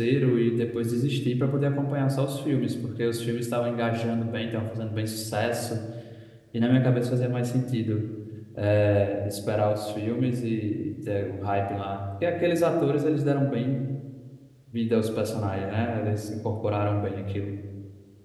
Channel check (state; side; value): identical; both; correlation 1.00